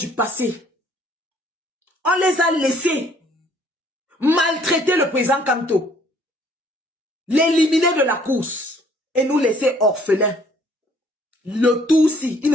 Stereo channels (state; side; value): normal; both; correlation 0.60